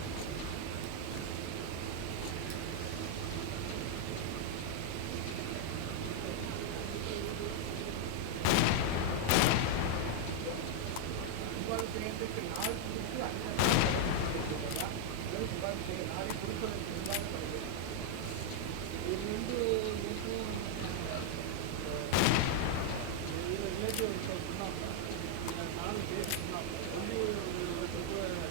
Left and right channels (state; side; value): different; both; correlation 0.00